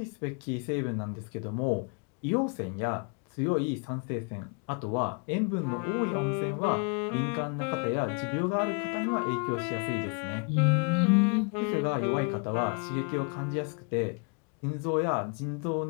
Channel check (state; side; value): quieter; right; 36.9 dB